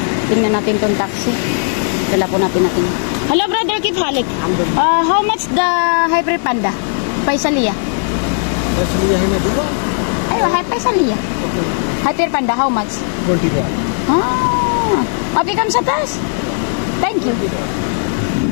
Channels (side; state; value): right; silent; digital silence